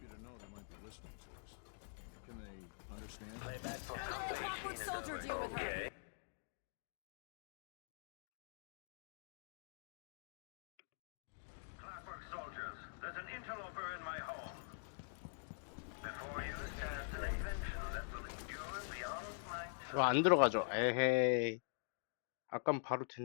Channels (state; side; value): silent; right; digital silence